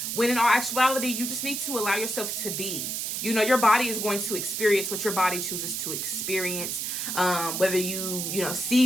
When in all actuality, you just need to allow yourself to be. You know, your body is going to experience what your body chooses to experience. Whether you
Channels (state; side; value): noise; right; hiss, 3 dB below the sound